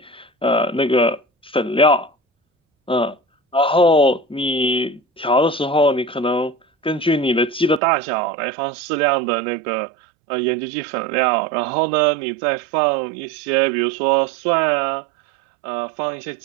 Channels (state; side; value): drops out; left; at 7.8 s